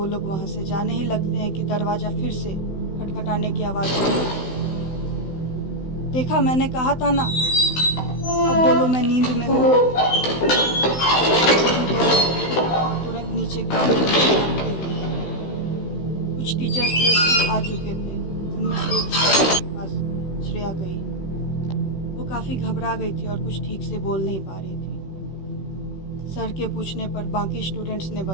लोग वहां से जाने ही लगते हैं कि दरवाजा फिर से खटखटाने की आवाज आई। देखा, मैंने कहा था ना, अब बोलो मैं नींद में हूँ। तुरंत नीचे ग्राउंड में भागते हुए कुछ टीचर्स जो स्कूल आ चुके थे, उनमें से एक टीचर के पास श्रेया गई। वो काफ़ी घबरा गई थी और कुछ ठीक से बोल नहीं पा रही थी। सर के पूछने पर बाकी स्टूडेंट्स ने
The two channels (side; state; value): right; late; 16 ms